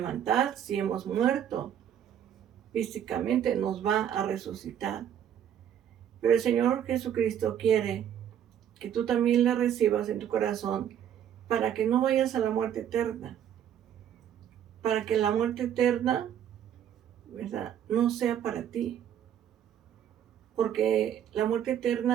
si hemos muerto físicamente, nos va a resucitar. Pero el Señor Jesucristo quiere que tú también le recibas en tu corazón para que no vayas a la muerte eterna. Para que la muerte eterna, ¿verdad?, no sea para ti. Porque la muerte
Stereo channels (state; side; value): quieter; left; 9.7 dB